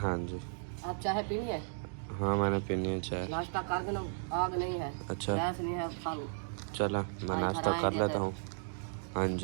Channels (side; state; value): left; silent; digital silence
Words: जी आप चाय पीनी है? हाँ मैंने पीनी है चाय। नाश्ता कर देना, आग नहीं है, अच्छा गैस नहीं है, खा लो। चला मैं नाश्ता कर लेता हूँ। हाँ